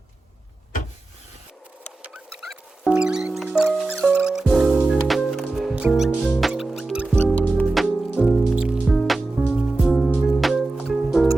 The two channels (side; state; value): left; quieter; 3.1 dB